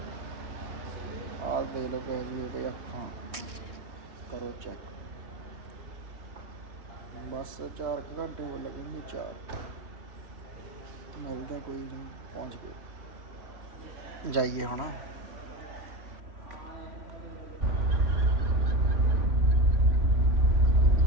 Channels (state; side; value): late; left; 3.2 ms